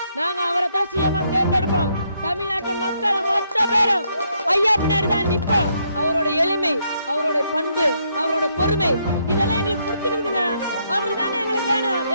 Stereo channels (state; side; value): inverted; both; correlation -0.74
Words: நாங்க அவரை தான் சிஎம்மா தேர்ந்தெடுப்போம். தமிழ்நாட்டு மக்கள் மொத்த பேரும் ஐயா பின்னாடி தான் நிற்போம். அவரோட எளிமை, அவரோட பண்பு, அவரோட பொறுமை இதெல்லாம் எங்களுக்கு பிடிச்சிருக்குதுங்க. அவரு தாங்க எங்களுக்கு வேணும்.